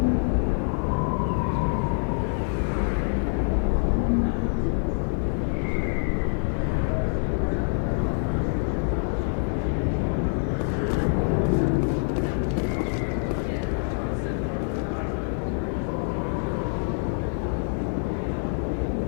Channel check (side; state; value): right; silent; 61 dB below the other